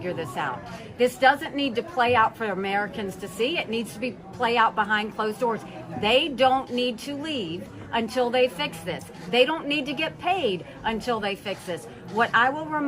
this out. This doesn't need to play out for Americans to see. It needs to be play out behind closed doors. They don't need to leave until they fix this. They don't need to get paid until they fix this. What I will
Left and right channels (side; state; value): both; identical; correlation 1.00